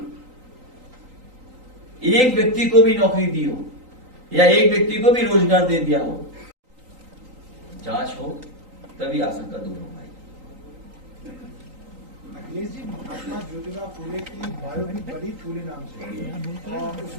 एक व्यक्ति को भी नौकरी दी हो, या एक व्यक्ति को भी रोजगार दे दिया हो, जांच हो, तभी आशंका दूर हो पाएगी। अखिलेश जी, महात्मा ज्योतिबा फूले की बायो भी बड़ी फूले नाम से है, और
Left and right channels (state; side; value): late; left; 3.9 ms